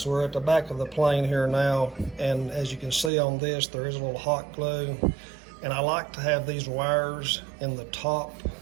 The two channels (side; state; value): left; drops out; at 3.1 s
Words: we're at the back of the plane here now, and as you can see on this, there is a little hot glue, and I like to have these wires in the top